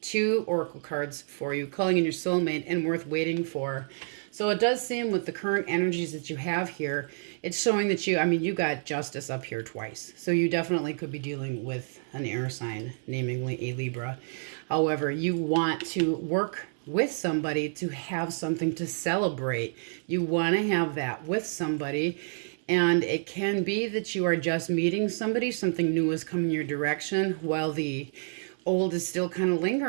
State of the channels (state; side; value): silent; left; digital silence